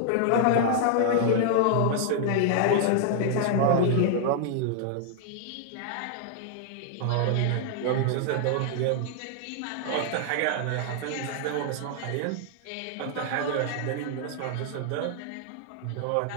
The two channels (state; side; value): different; both; correlation -0.01